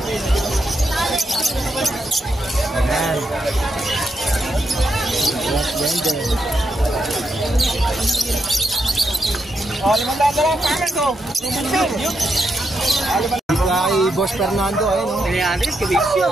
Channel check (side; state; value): both; normal; correlation 0.82